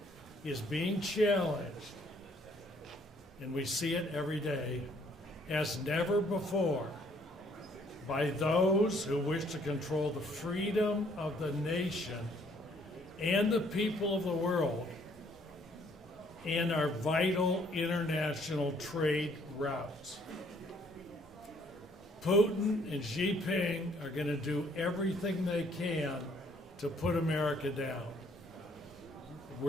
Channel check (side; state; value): both; normal; correlation 0.64